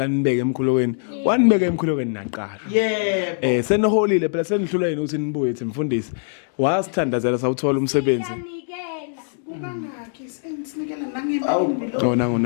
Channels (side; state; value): right; silent; digital silence